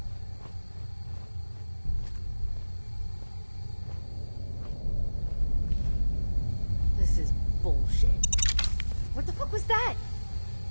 This is bullshit. What the fuck was that?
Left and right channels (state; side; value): inverted; both; correlation -1.00